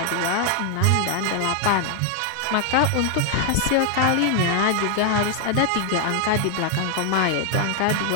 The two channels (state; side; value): different; both; correlation 0.00